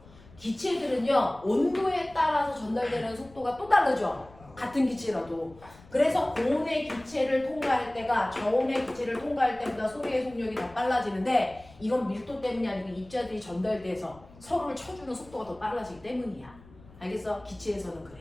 기체들은요, 온도에 따라서 전달되는 속도가 또 다르죠. 같은 기체라도. 그래서 고온의 기체를 통과할 때가 저온의 기체를 통과할 때보다 소리의 속력이 더 빨라지는데, 이건 밀도 때문이 아니고 입자들이 전달돼서 서로를 쳐주는 속도가 더 빨라지기 때문이야. 알겠어? 기체에서는 그래.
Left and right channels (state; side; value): noise; left; rumble, 23 dB below the sound